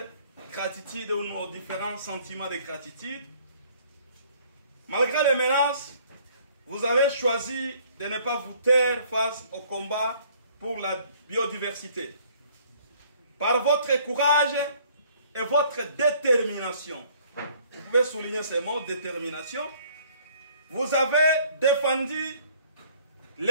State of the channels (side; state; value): both; inverted; correlation -0.58